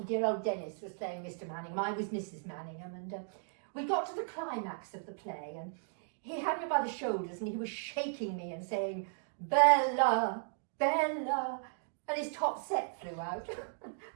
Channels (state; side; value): silent; left; digital silence